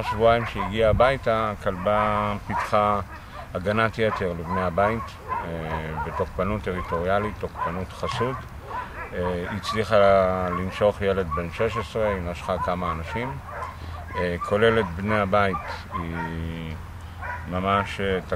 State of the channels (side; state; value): both; identical; correlation 1.00